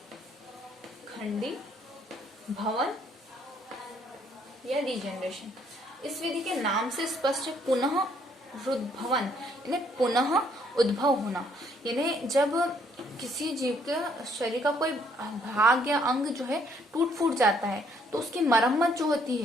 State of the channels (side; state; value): both; normal; correlation 0.66